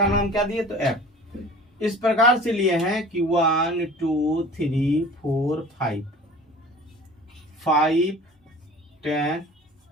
नाम क्या दिए, तो एफ। इस प्रकार से लिए हैं कि 1 2 3 4 5 5 10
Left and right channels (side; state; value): both; normal; correlation 0.42